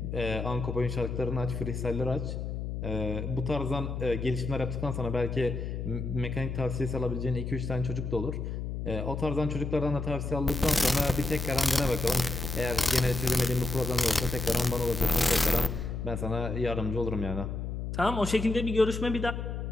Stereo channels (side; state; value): left; noise; hum, 4 dB below the sound